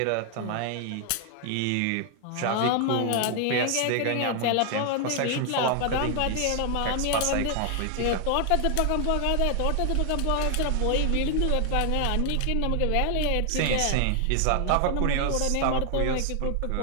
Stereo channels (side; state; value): both; different; correlation 0.00